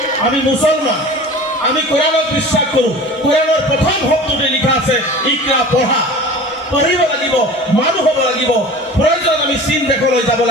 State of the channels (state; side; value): normal; both; correlation 0.39